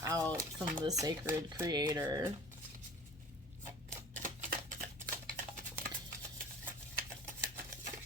out from the sacred creator.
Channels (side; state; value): both; normal; correlation 0.43